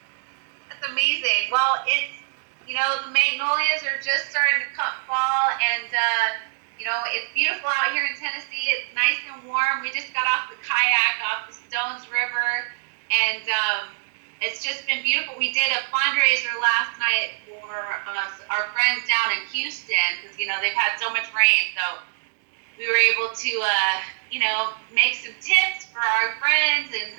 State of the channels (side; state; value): left; silent; digital silence